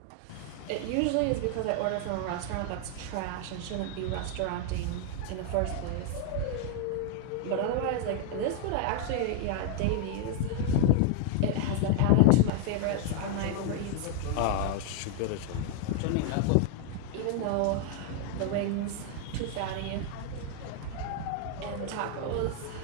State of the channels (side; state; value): both; different; correlation 0.00